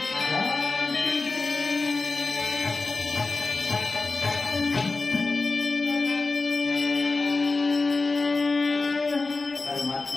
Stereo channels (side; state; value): right; quieter; 3.7 dB